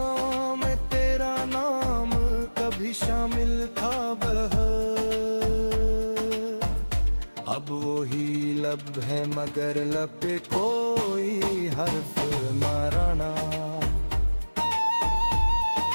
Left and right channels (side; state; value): both; inverted; correlation -1.00